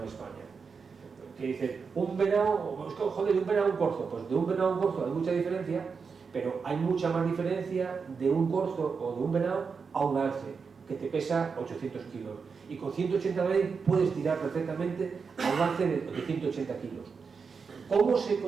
en España. Que dice, un venado, joder, de un venado a un corzo, pues de un venado a un corzo hay mucha diferencia, pero hay mucha más diferencia de un corzo o de un venado a un alce, que te pesa 800 kilos. Y con 180 veces puedes tirar perfectamente a un alce de 180 kilos. ¿Cómo se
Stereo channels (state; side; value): quieter; left; 5.4 dB